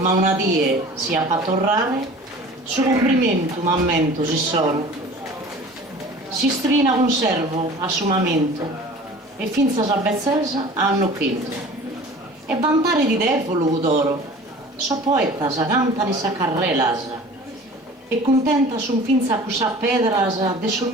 una die si appatorrare, su complimento m'ammento si sono, si strina un servo a sumamento, e finza sa bezzesa hanno quinto, e vantare di devolo d'oro, so poeta sa canta di sa carrelas, e contenta son finza cusa pedras de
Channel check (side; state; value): both; normal; correlation 0.43